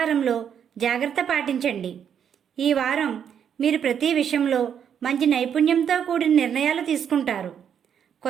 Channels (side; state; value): left; quieter; 8.3 dB